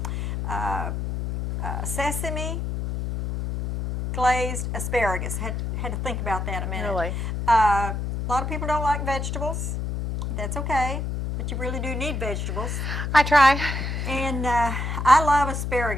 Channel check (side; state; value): left; noise; hum, 3 dB below the sound